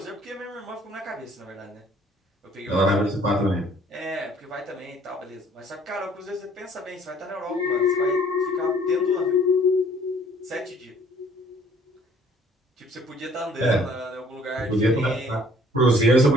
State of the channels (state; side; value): normal; both; correlation 0.57